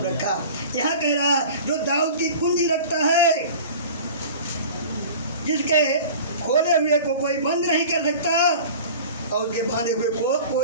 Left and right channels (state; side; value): inverted; both; correlation -0.39